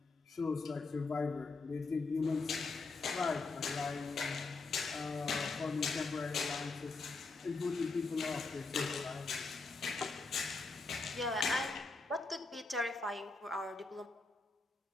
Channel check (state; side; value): quieter; right; 3.8 dB